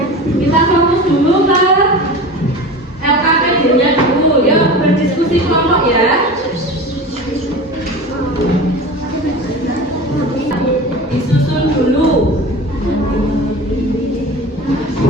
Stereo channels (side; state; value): both; normal; correlation 0.33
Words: Kita fokus dulu ke LKPD-nya dulu. Yuk berdiskusi kelompok ya. Disusun dulu.